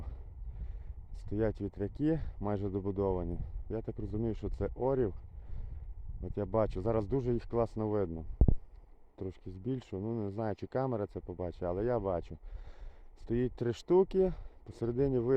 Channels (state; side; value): identical; both; correlation 1.00